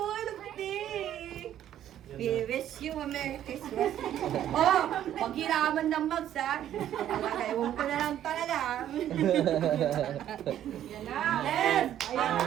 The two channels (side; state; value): left; quieter; 11.3 dB